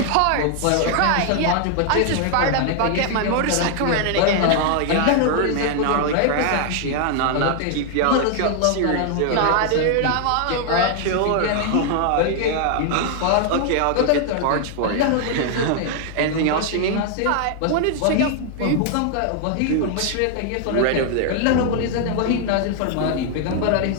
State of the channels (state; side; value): different; both; correlation 0.00